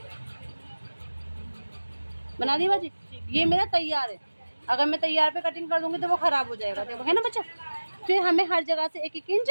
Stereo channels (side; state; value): both; inverted; correlation -1.00